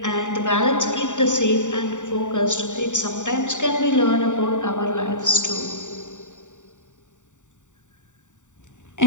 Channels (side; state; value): right; late; 0.86 ms